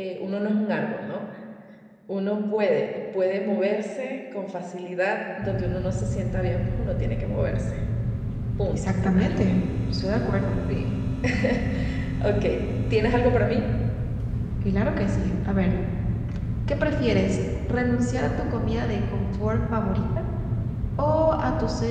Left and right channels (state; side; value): identical; both; correlation 1.00